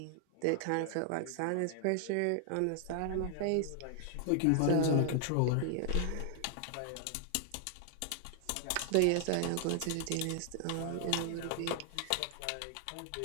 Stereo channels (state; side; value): different; both; correlation 0.00